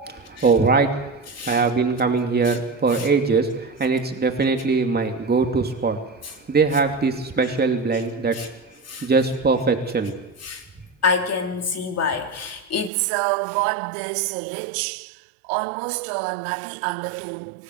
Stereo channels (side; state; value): left; drops out; at 12.9 s